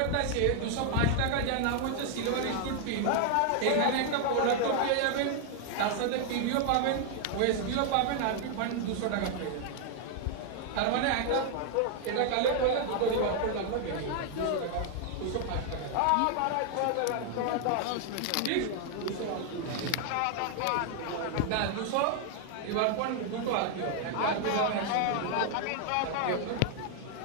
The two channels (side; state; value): both; different; correlation 0.00